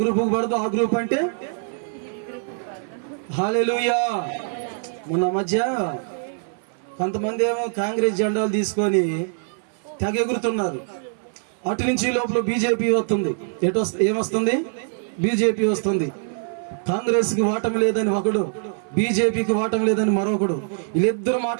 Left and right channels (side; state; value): left; silent; 56 dB below the other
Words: గ్రూపుకు పడదు, ఆ గ్రూప్ అంటే హల్లెలూయా. మొన్న మధ్య కొంతమంది ఏమో కాంగ్రెస్ జెండాలు తీసుకొని తెగ ఎగురుతున్నారు. అటు నుంచి లోపల బీజేపీ వస్తుంది. ఏమొస్తుంది? బీజేపీ వస్తుంది. కాంగ్రెస్కి ఓటమి లేదని ఒకడు, బీజేపీకి ఓటమి లేదని మరొకడు. వీళ్ళిద్దరు